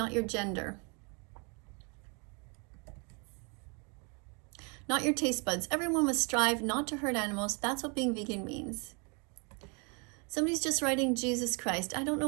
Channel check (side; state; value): left; quieter; 33.8 dB